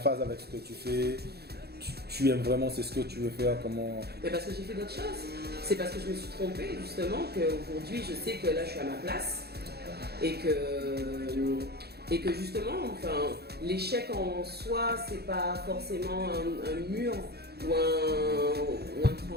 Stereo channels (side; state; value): left; late; 0.47 ms